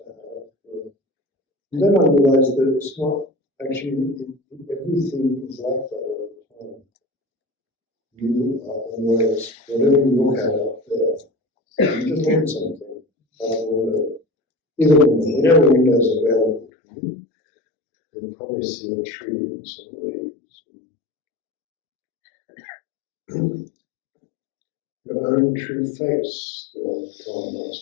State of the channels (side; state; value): right; drops out; at 16.7 s